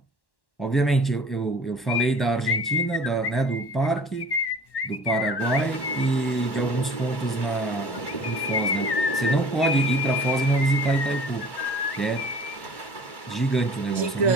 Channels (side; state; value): right; late; 1.1 ms